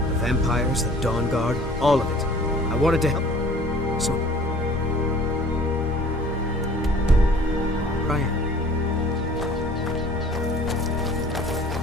The vampires, the Dawn Guard, all of it. I wanted to help. So... Ryan.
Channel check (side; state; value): both; normal; correlation 0.50